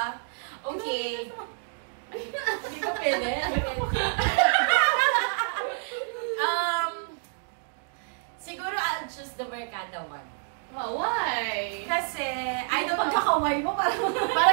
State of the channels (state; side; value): silent; left; digital silence